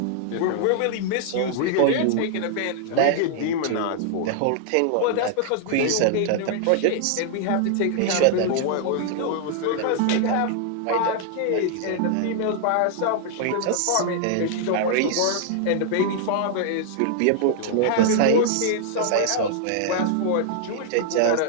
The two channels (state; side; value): different; both; correlation 0.00